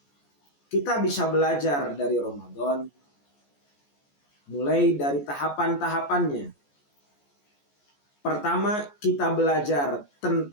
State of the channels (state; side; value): late; right; 14 ms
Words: Kita bisa belajar dari Ramadan, mulai dari tahapan-tahapannya. Pertama, kita belajar